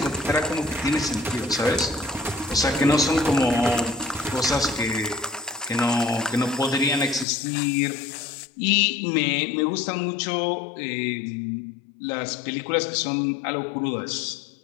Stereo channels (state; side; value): drops out; right; at 7.2 s